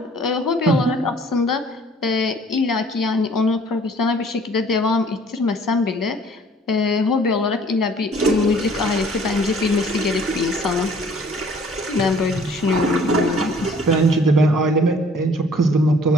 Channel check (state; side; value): normal; both; correlation 0.55